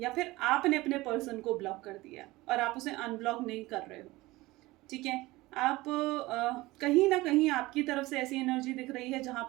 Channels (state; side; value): quieter; left; 19.8 dB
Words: फिर आपने अपने पर्सन को ब्लॉक कर दिया और आप उसे अनब्लॉक नहीं कर रहे हो। ठीक है, आप कहीं ना कहीं आपकी तरफ से ऐसी एनर्जी दिख रही है जहाँ